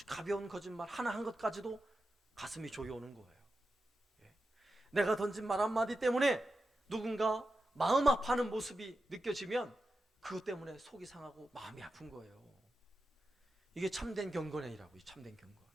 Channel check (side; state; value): both; normal; correlation 0.90